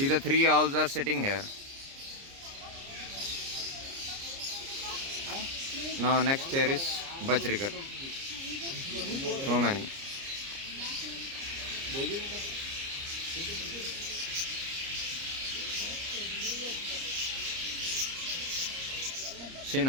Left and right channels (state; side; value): late; left; 30 ms